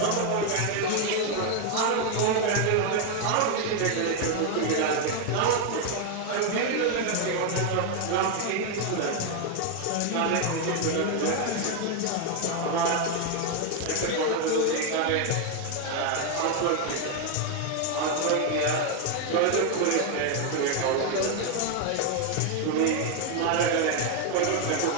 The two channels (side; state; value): both; different; correlation 0.01